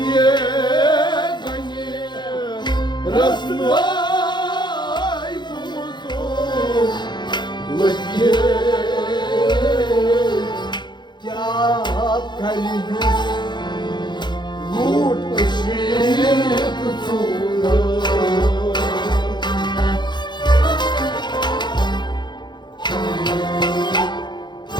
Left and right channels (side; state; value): right; late; 0.21 ms